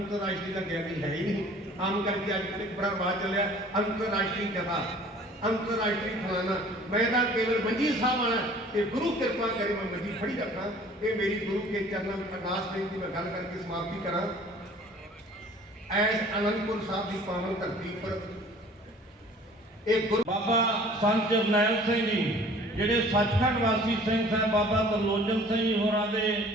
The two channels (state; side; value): normal; both; correlation 0.50